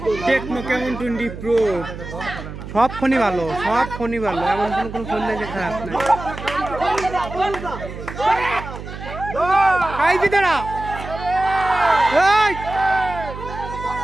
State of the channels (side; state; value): right; noise; hum, 11 dB below the sound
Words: টেকনো কেমন 20 প্রো সব ফোনই ভালো, সব ফোনই ভালো, এমন কোনো ফোন নেই যে খারাপ নাই।